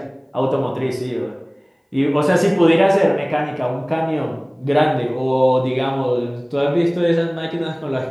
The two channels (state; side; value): identical; both; correlation 1.00